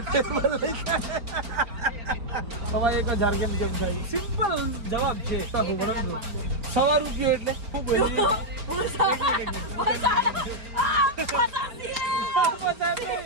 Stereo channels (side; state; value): left; late; 4.4 ms